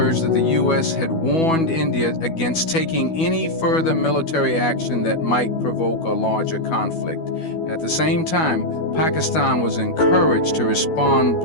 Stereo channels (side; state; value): right; late; 12 ms